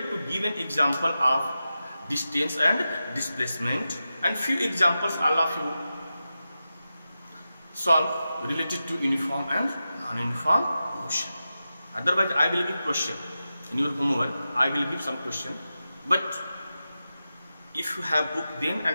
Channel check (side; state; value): both; inverted; correlation -0.92